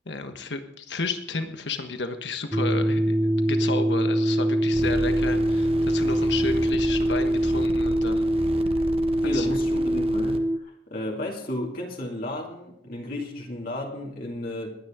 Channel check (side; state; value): both; normal; correlation 0.85